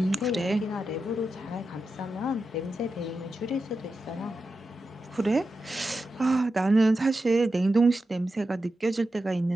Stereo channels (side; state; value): both; normal; correlation 0.90